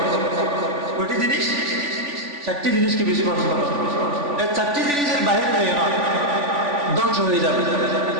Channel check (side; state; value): left; late; 3.5 ms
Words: কয়টি জিনিস? চারটি জিনিসকে বেশি পছন্দ করো। এই চারটি জিনিসের বাইরে যায় না, ধ্বংস হয়ে যাবে।